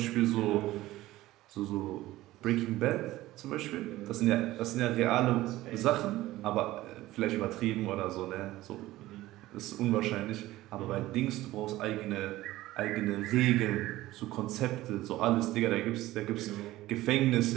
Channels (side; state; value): left; quieter; 16.7 dB